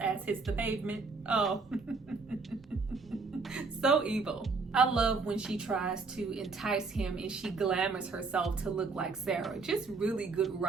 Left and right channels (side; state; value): left; quieter; 4.2 dB